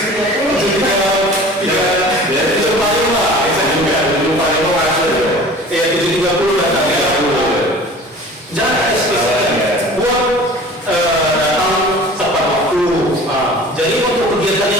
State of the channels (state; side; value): normal; both; correlation 0.42